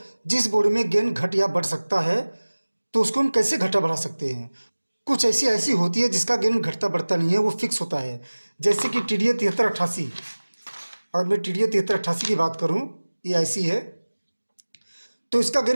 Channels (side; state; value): both; inverted; correlation -1.00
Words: जिस बोर्ड में गेन घट या बढ़ सकता है, तो उसको हम कैसे घटा बढ़ा सकते हैं। कुछ ऐसी होती है जिसका गेन घटता बढ़ता नहीं है, वो फिक्स होता है। जैसे कि TDA 7388। और मैं TDA 7388 की बात करूँ, ये ऐसी है तो इसका